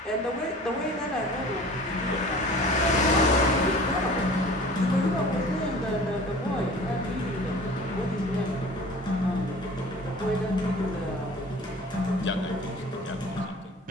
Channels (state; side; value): normal; both; correlation 0.44